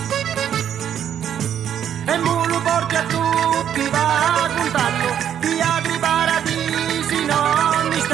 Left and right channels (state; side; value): quieter; left; 9.5 dB